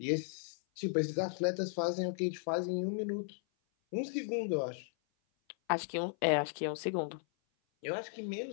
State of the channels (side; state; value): right; silent; 54 dB below the other